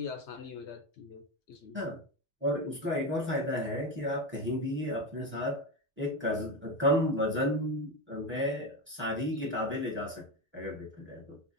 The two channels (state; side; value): normal; both; correlation 0.16